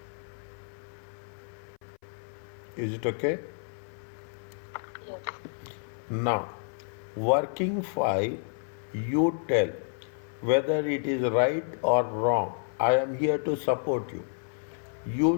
Is it okay? Yes. Now, working file, you tell whether it is right or wrong. I am here to support you.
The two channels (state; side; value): silent; right; 58 dB below the other